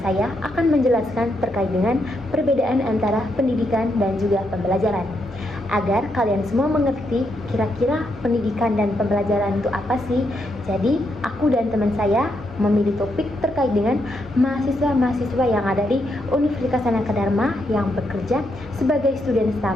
saya akan menjelaskan terkait dengan perbedaan antara pendidikan dan juga pembelajaran. Agar kalian semua mengerti kira-kira pendidikan dan pembelajaran itu apa sih. Jadi, aku dan teman saya memilih topik terkait dengan mahasiswa-mahasiswa yang ada di Universitas Sanaka Dharma yang bekerja sebagai student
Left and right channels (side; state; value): both; normal; correlation 0.79